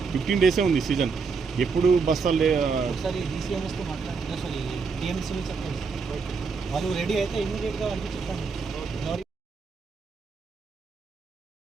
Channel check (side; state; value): left; quieter; 5.0 dB